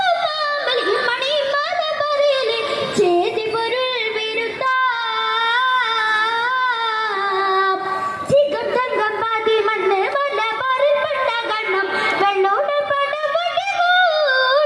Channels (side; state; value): both; identical; correlation 1.00